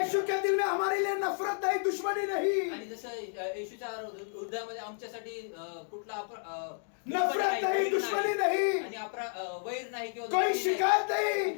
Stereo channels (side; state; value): right; silent; digital silence